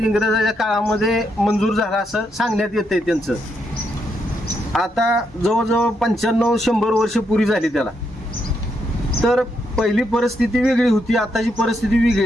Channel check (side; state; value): both; normal; correlation 0.79